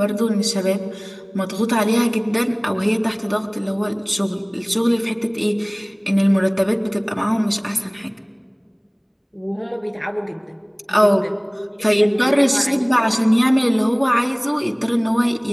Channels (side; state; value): both; identical; correlation 1.00